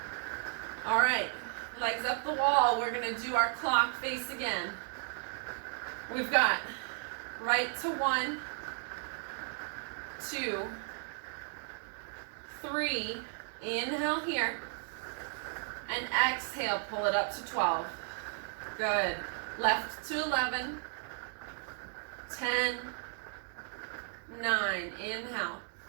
All right, legs up the wall. We're gonna do our clock face again. We've got right to 1, 2, 3. Inhale here. And exhale, pull it up to 12. Good. Left to 11. 10. 9. Inhale.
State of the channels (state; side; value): silent; left; 55 dB below the other